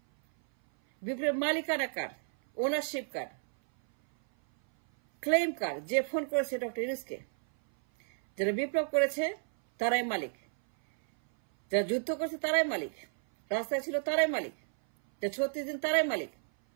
বিপ্লবের মালিকানা কার, ওনারশিপ কার, ক্লেম কার, যে ফোন করেছে ডক্টর ইউনুসকে, যারা বিপ্লব করেছে তারাই মালিক, যারা যুদ্ধ করেছে তারাই মালিক, রাস্তায় ছিল তারাই মালিক, যারা 36 দিন তারাই মালিক,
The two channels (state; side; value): silent; left; 57 dB below the other